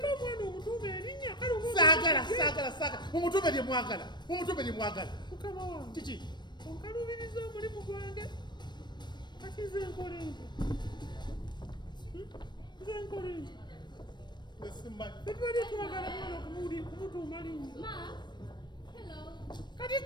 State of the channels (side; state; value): right; late; 0.22 ms